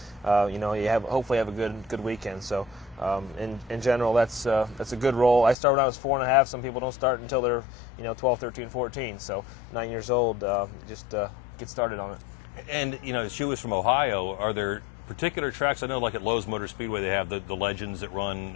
you hopefully have a good weekend. So in general, that's a good role. I started when I was 4.5. Some people don't start until they're 12, 13, 14. So 9 years old, just get started on it. And she was from Ohio. Are there particular tracks? I know, like at Lowe's Motor Speedway, they have the Legends that run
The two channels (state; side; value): drops out; right; at 5.6 s